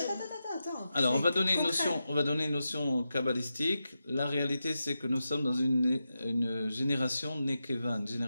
attends. Alors, on C'est va donner concret. une notion kabbalistique. La réalité, c'est que nous sommes dans une génération nekeva, une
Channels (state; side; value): inverted; both; correlation -0.89